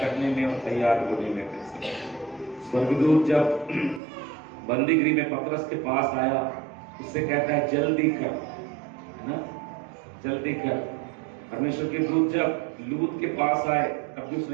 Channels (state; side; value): drops out; left; at 4.0 s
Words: में और तैयार होने में। स्वर्गदूत जब बंदीगृह में पतरस के पास आया, उससे कहता है जल्दी कर, है ना, जल्दी कर। परमेश्वर के दूत जब लूत के पास आए तब भी